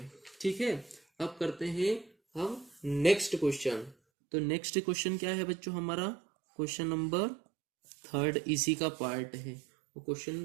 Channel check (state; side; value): drops out; left; at 4.0 s